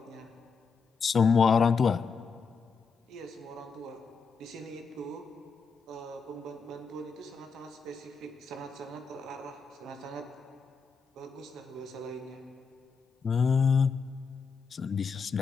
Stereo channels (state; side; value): quieter; right; 5.2 dB